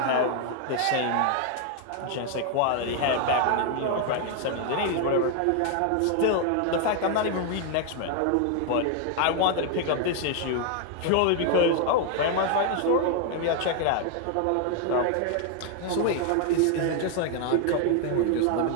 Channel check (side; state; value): both; different; correlation 0.00